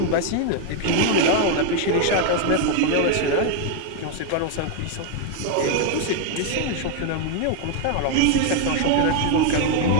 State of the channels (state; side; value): different; both; correlation 0.01